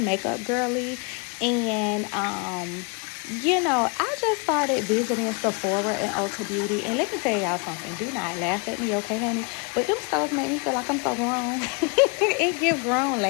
girly, and I just started visiting Sephora and Ulta Beauty. And let me tell y'all something. Do not laugh at me, okay, honey? But them stores make me feel like I'm so grown. It give grown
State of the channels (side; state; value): right; quieter; 33.5 dB